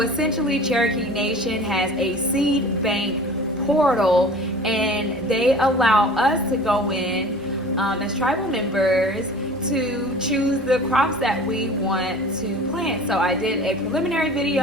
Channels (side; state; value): both; normal; correlation 0.42